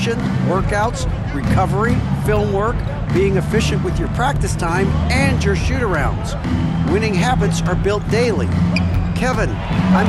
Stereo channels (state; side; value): identical; both; correlation 1.00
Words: workouts, recovery, film work, being efficient with your practice time, and your shoot-arounds. Winning habits are built daily. Kevin, I'm